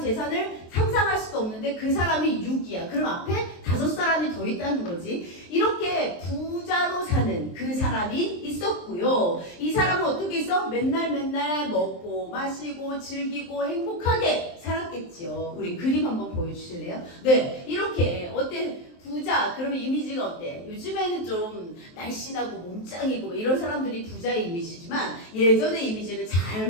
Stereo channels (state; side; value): late; right; 23 ms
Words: 상상할 수도 없는데 그 사람이 6위야. 그럼 앞에 5사람이 더 있다는 거지. 이렇게 부자로 사는 그 사람이 있었고요. 이 사람은 어떻게 있어? 맨날 먹고 마시고 즐기고 행복하게 살았겠지요. 우리 그림 한번 보여주실래요? 네, 이렇게 어때? 부자, 그러면 이미지가 어때? 요즘에는 좀 날씬하고 몸짱이고 이런 사람들이 부자의 이미지지만 예전의 이미지는 잘